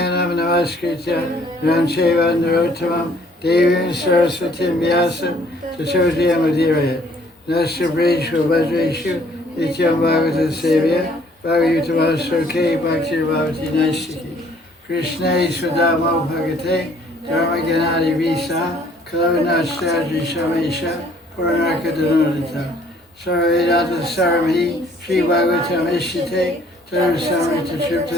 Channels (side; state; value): both; normal; correlation 0.60